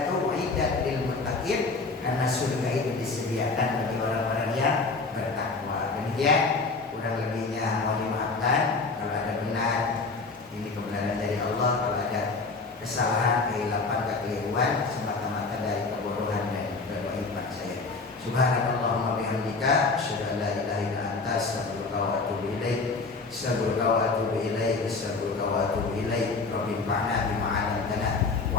kesalahan, kehilapan, kekeliruan semata-mata dari kebodohan dan kebaikan saya. Subhanallahumma bihamdika asyhadu an la ilaha illa anta astaghfiruka wa atubu ilaik. Astaghfiruka wa atubu ilaik. Astaghfiruka wa atubu ilaik. Rabbi fa'na bima 'allamtana wa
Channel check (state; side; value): quieter; right; 4.0 dB